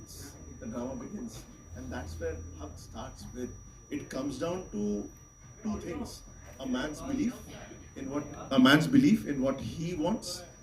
the drama begins, and that's where Haq starts with. It comes down to two things: a man's belief in what he wants,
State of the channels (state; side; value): identical; both; correlation 1.00